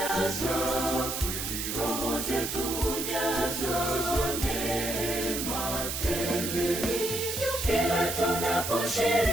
roho zetu hujazwa neema tele. Kila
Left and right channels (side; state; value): right; noise; hiss, 3 dB below the sound